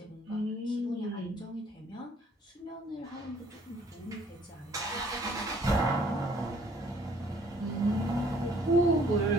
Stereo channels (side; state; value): both; normal; correlation 0.60